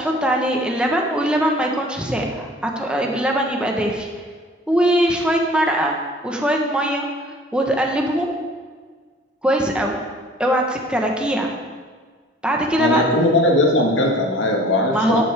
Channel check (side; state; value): both; normal; correlation 0.49